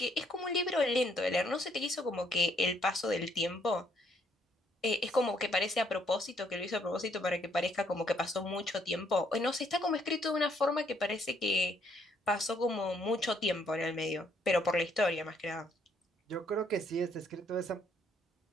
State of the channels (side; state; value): both; normal; correlation 0.69